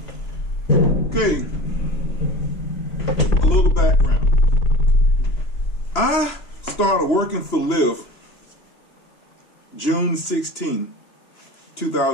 Okay, a little background. I started working for Lyft June 16,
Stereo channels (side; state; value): right; late; 3.0 ms